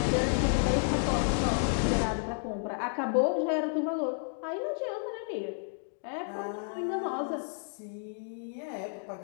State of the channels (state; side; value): silent; right; digital silence